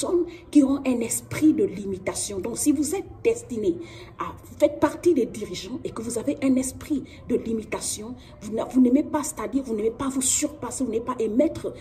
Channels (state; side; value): identical; both; correlation 1.00